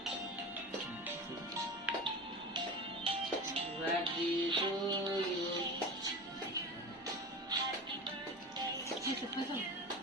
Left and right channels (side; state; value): both; normal; correlation 0.30